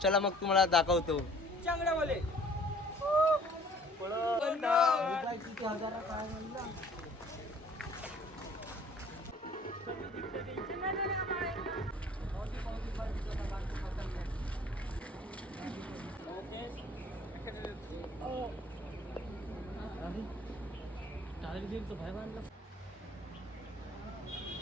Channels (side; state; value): both; normal; correlation 0.53